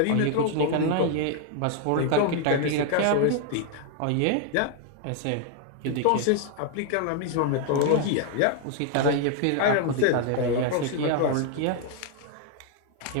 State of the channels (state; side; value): different; both; correlation 0.00